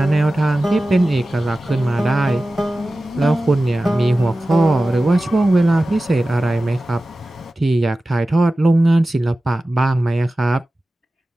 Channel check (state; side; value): normal; both; correlation 0.95